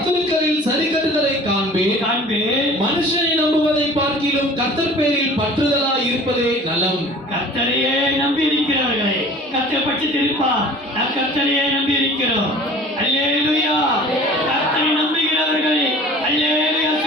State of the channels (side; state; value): both; normal; correlation 0.45